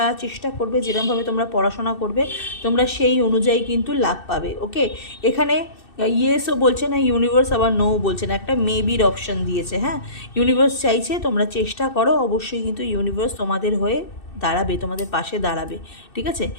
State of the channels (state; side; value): late; right; 2.6 ms